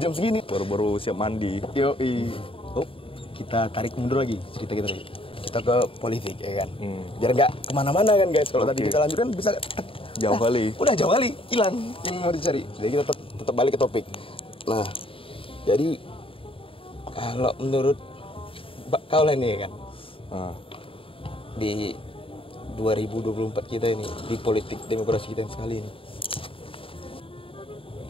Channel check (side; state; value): right; late; 0.26 ms